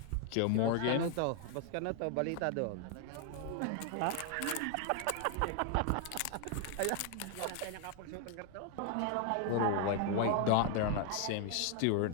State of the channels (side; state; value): both; different; correlation 0.00